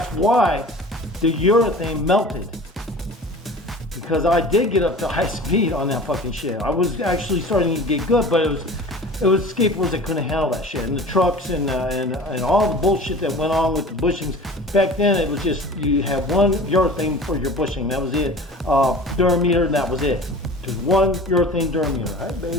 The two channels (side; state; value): both; normal; correlation 0.40